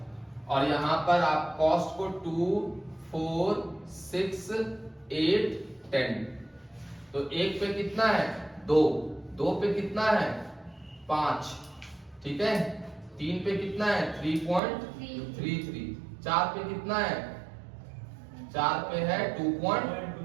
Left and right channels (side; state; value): left; drops out; at 14.6 s